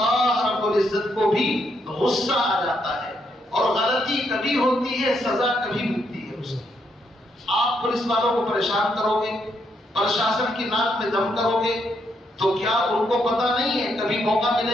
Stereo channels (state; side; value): normal; both; correlation 0.76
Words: رب العزت کو بھی غصہ آ جاتا ہے، اور غلطی کبھی ہوتی ہے، سزا کبھی ملتی ہے اس کی۔ آپ پولیس والوں کو پریشان کرو گے، پرشاسن کی ناک میں دم کرو گے، تو کیا ان کو پتہ نہیں ہے کبھی موقع